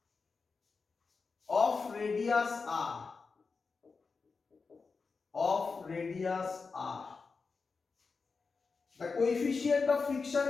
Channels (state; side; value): quieter; right; 4.6 dB